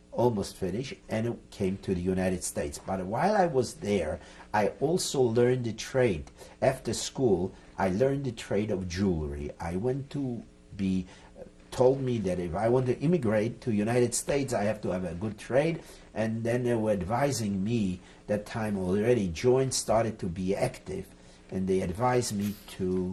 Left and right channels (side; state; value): both; identical; correlation 1.00